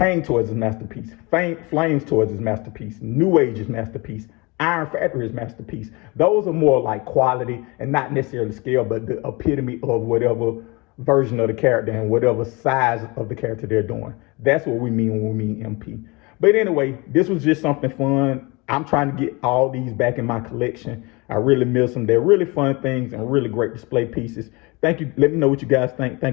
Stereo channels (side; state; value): right; quieter; 26.2 dB